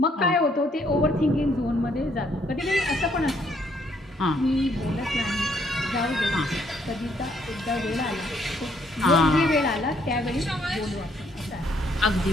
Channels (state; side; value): normal; both; correlation 0.69